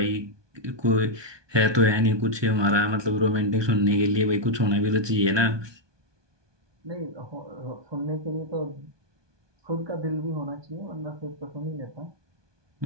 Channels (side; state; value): left; late; 1.2 ms